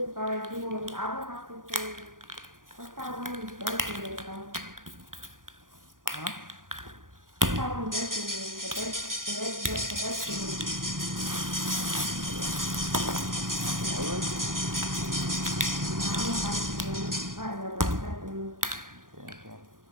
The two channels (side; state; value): left; late; 0.90 ms